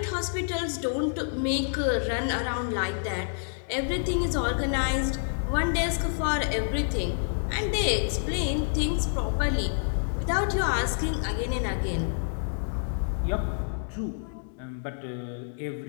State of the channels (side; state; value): right; silent; digital silence